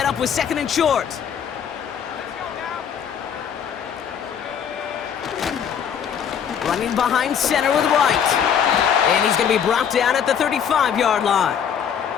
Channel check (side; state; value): right; quieter; 8.1 dB